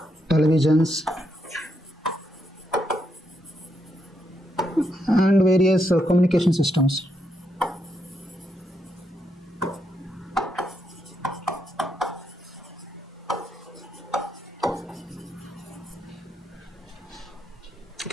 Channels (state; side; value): normal; both; correlation 0.80